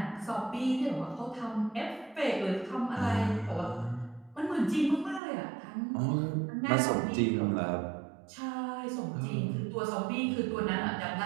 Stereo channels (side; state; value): left; drops out; at 5.2 s